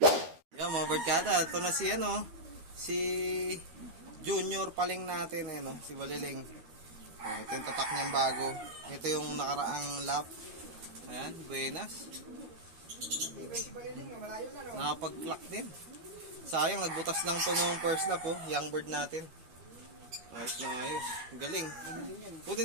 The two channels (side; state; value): left; late; 12 ms